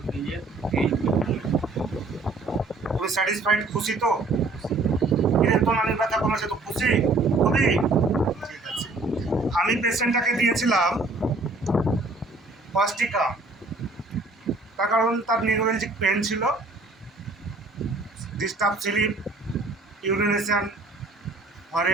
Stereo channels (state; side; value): quieter; left; 3.2 dB